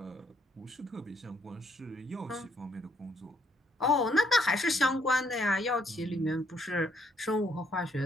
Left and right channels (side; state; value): both; normal; correlation 0.70